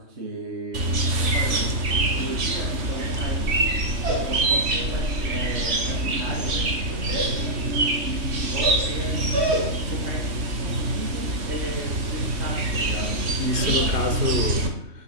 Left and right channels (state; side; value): late; left; 3.2 ms